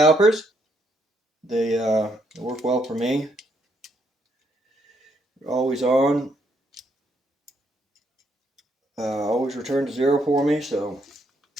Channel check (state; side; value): normal; both; correlation 0.74